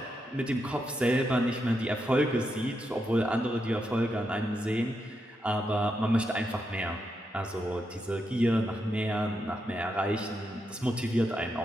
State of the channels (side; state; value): both; normal; correlation 0.83